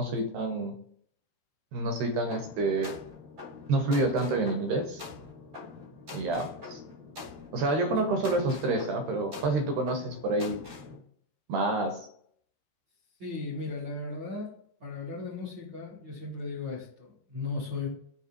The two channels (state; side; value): late; left; 13 ms